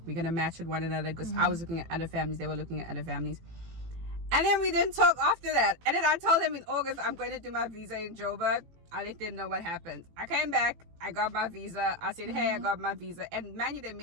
we're gonna match with one another, because I was looking at other families, they were looking at other families. And then we didn't talk after that. And then I told them in August I'm going to do my visa in Joburg. I let them know what happened. I came back, I got my visa. I said, hey, I got my visa. And man, they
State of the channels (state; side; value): late; left; 18 ms